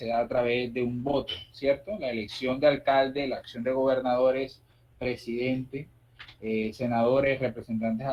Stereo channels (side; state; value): both; identical; correlation 1.00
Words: da a través de un voto, ¿cierto? La elección de alcalde, la acción de gobernadores, presidente, senadores, representantes